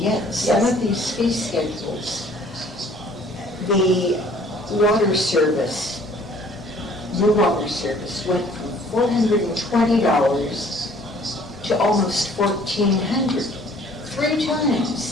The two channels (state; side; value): normal; both; correlation 0.55